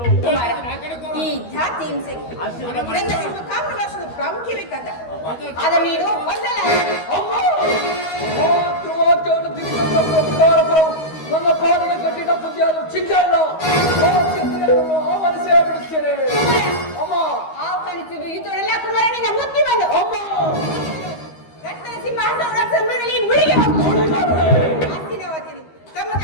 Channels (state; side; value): late; right; 13 ms